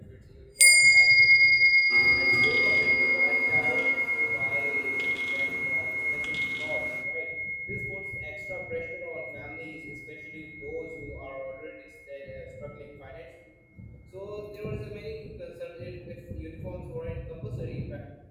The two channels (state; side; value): identical; both; correlation 1.00